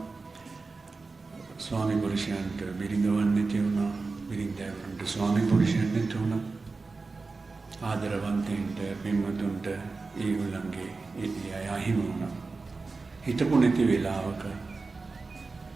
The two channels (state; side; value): quieter; left; 4.0 dB